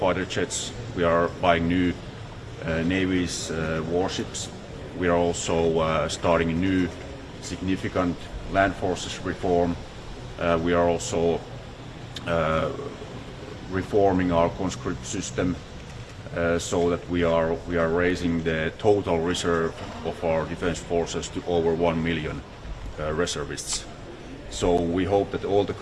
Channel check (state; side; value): identical; both; correlation 1.00